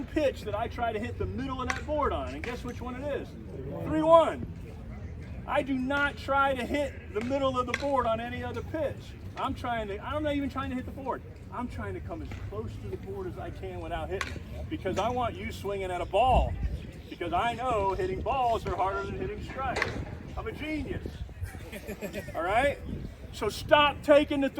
pitch that I try to hit the middle of that board on, and guess which one it is? 3-1. I do not try to hit the middle of the board on any other pitch. I'm not even trying to hit the board. I'm trying to come as close to the board as I can without hitting, because I want you swinging at a ball, because I know hitting balls are harder than hitting strikes. I'm a genius. All right? So stop taking the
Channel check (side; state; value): both; identical; correlation 1.00